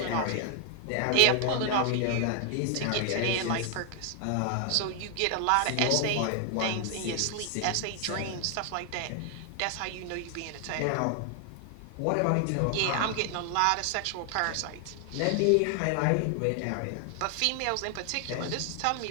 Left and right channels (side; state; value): both; different; correlation 0.00